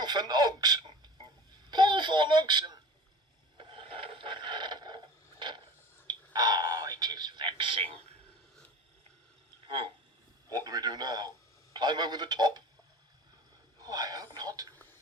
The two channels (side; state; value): both; normal; correlation 0.37